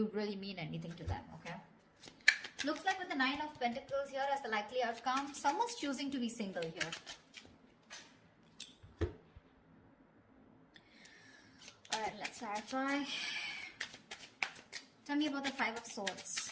really mean anything to them, okay? Looks like with the Nine of Pentacles here as the likely outcome, someone's choosing to be single here. Alright, let's clarify. Tell me about the Five of Swords.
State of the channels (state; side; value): identical; both; correlation 1.00